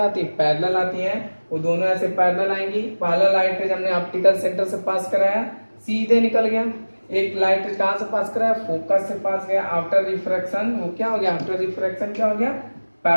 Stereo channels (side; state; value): both; inverted; correlation -1.00